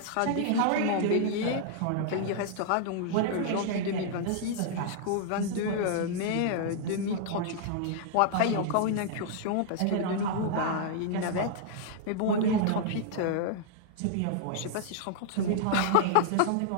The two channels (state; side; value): different; both; correlation -0.01